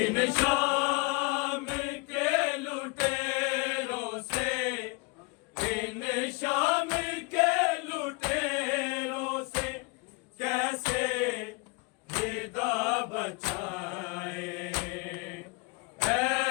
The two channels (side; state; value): right; quieter; 29.2 dB